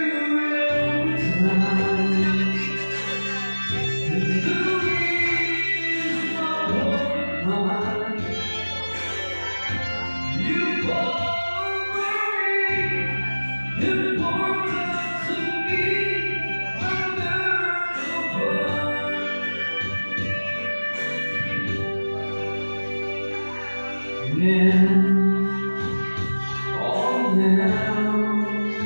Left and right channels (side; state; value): both; inverted; correlation -1.00